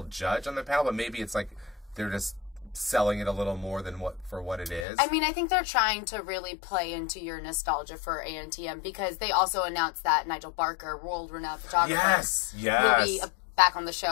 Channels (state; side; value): drops out; right; at 4.9 s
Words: judge on the panel, but maybe it's like they're just selling it a little more than what it is. I mean, I think they're trying to really play into your nostalgia for ANTM because they also announced that Nigel Barker, world-renowned photographer, will be back on the